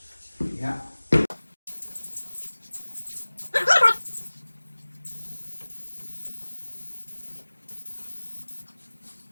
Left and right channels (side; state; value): both; inverted; correlation -1.00